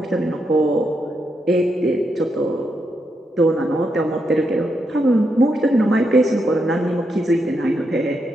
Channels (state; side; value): normal; both; correlation 0.82